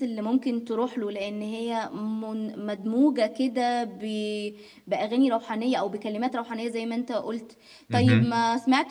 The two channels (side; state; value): both; identical; correlation 1.00